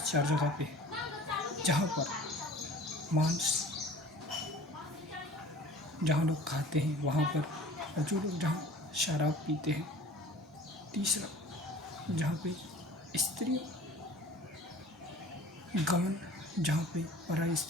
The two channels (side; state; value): both; normal; correlation 0.44